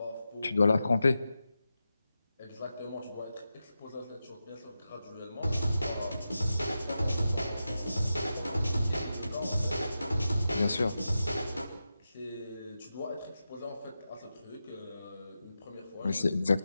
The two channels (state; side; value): inverted; both; correlation -0.91